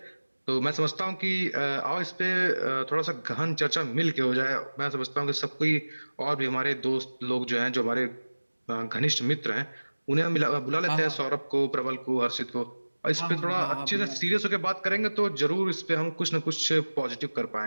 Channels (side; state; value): both; inverted; correlation -1.00